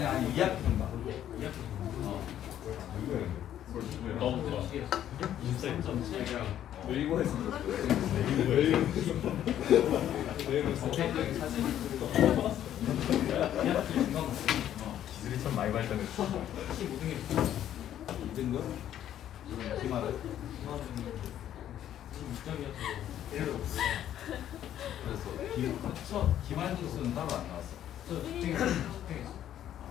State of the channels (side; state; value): right; quieter; 11.1 dB